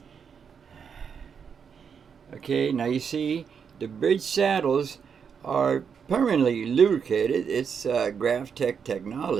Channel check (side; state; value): left; quieter; 6.7 dB